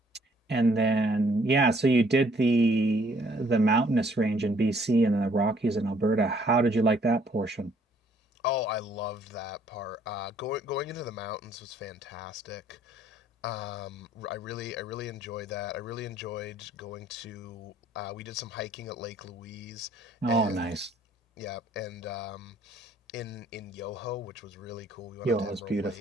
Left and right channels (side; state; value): both; normal; correlation 0.63